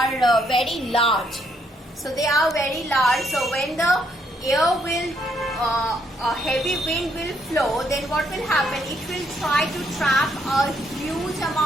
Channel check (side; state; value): both; normal; correlation 0.72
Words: very large. So they are very large. So when the air will, a heavy wind will flow, then what will happen? It will try to trap a huge